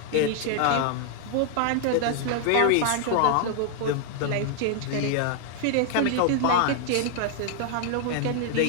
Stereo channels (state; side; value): different; both; correlation 0.00